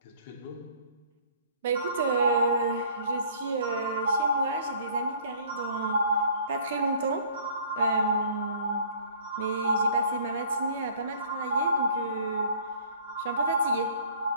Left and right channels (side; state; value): both; inverted; correlation -0.53